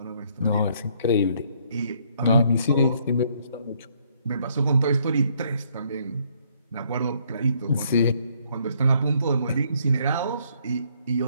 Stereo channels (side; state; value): both; inverted; correlation -0.68